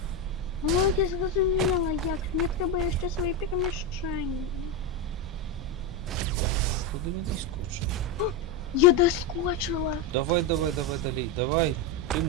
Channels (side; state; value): both; normal; correlation 0.10